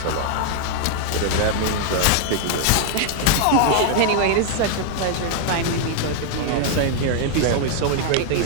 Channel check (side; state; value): both; different; correlation 0.00